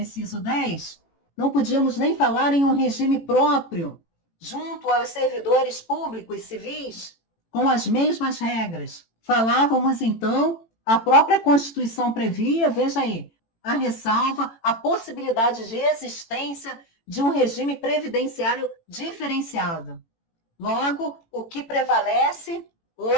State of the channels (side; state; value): right; late; 18 ms